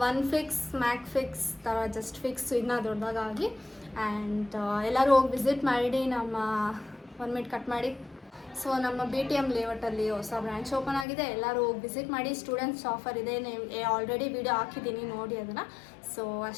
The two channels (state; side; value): drops out; right; at 11.1 s